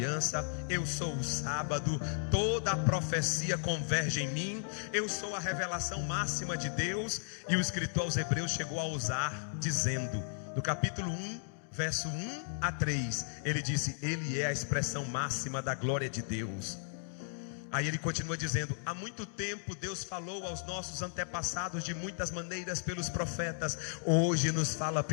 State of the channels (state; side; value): silent; right; digital silence